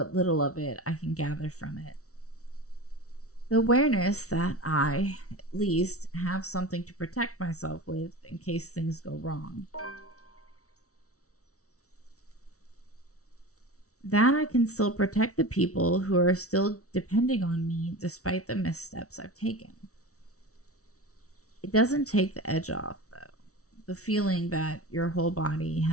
little of it I can gather from it. The awareness that I, at least, have something to protect myself with in case things go wrong. That I can still protect the people who are still depending on me despite the missteps I've taken. It doesn't take the edge off, though. The feeling that your whole body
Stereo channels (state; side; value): late; right; 0.65 ms